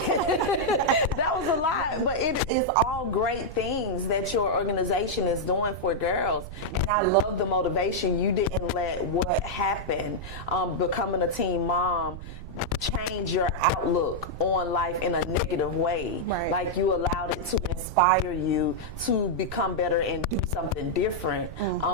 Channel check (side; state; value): right; noise; rumble, 11 dB below the sound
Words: was a lot, but it is all great things that your organization is doing for girls. And I love the motivation. You didn't let what happened, becoming a teen mom, change your outlook on life in a negative way. Right. Like, you allowed it to inspire you to become better and do something different